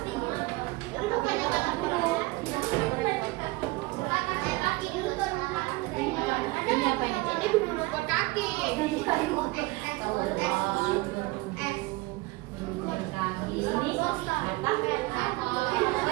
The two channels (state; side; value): quieter; left; 22.1 dB